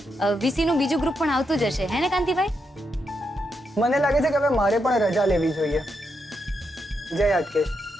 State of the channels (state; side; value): normal; both; correlation 0.83